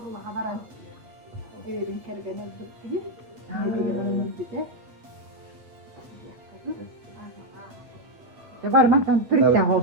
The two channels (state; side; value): late; left; 8.3 ms